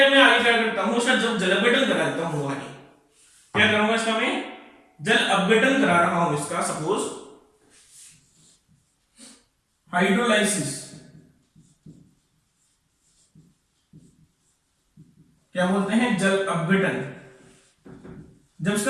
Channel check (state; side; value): identical; both; correlation 1.00